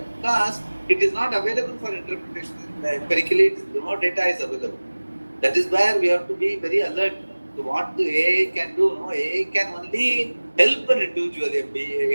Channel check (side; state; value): both; inverted; correlation -1.00